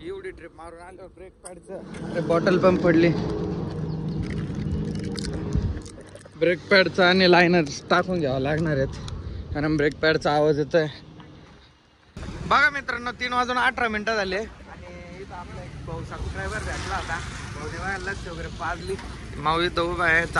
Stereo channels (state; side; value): identical; both; correlation 1.00